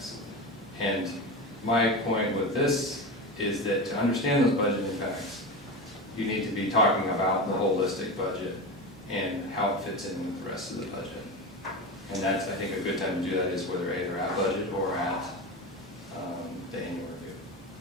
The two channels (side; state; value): both; normal; correlation 0.23